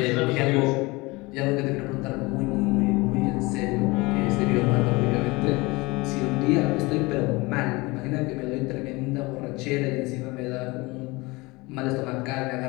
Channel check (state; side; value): quieter; right; 23.7 dB